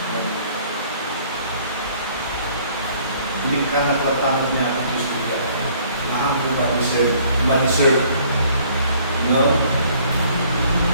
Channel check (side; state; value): both; inverted; correlation -0.59